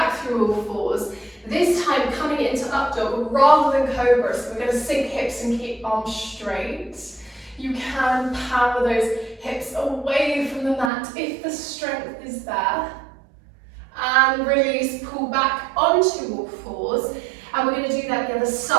through all fours. This time coming into up dog rather than cobra, so we're going to sink hips and keep arms straight. You can power those hips away from the mat if the strength is there. And release, pull back onto all fours. And we're going to do that the other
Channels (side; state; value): left; drops out; at 10.9 s